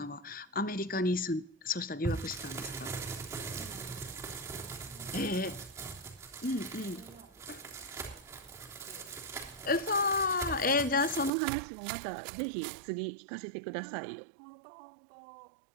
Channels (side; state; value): left; drops out; at 11.3 s